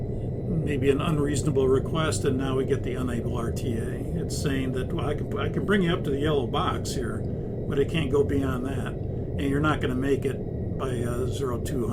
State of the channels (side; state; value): both; identical; correlation 1.00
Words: maybe an unreasonable request, and now we get the unable RTA. It's saying that, well, I can bring you up to the yellow box here, but it can't go beyond that, and you're not going to make it by